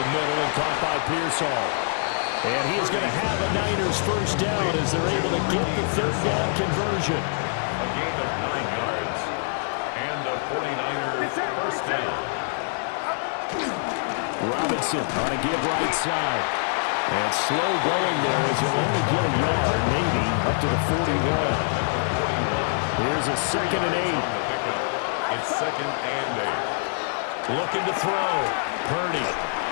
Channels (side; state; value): right; silent; 62 dB below the other